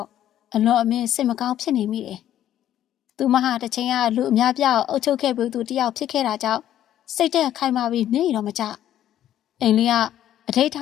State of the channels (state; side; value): quieter; right; 11.6 dB